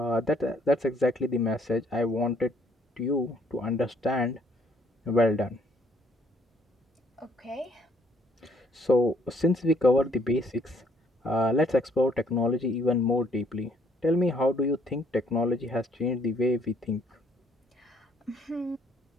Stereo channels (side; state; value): both; normal; correlation 0.65